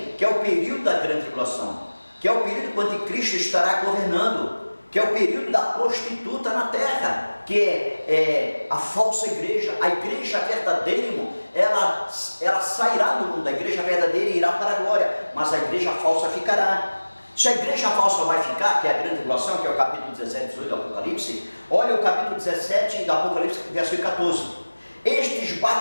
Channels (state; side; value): inverted; both; correlation -1.00